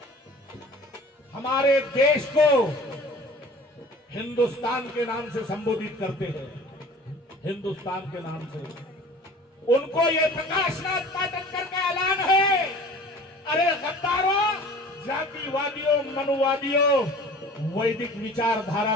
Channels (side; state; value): both; normal; correlation 0.44